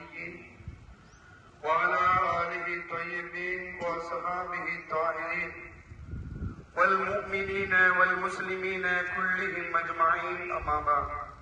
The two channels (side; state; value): both; identical; correlation 1.00